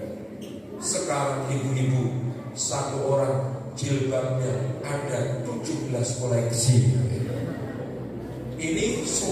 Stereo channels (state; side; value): identical; both; correlation 1.00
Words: Sekarang ibu-ibu 1 orang jilbabnya ada 17 koleksi. Ini